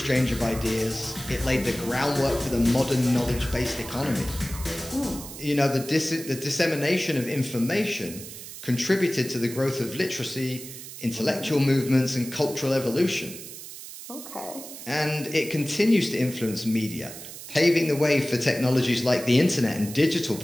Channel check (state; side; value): noise; right; hiss, 12 dB below the sound